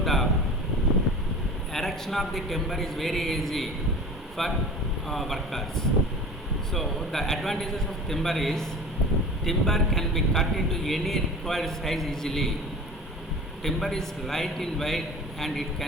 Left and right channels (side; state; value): both; normal; correlation 0.38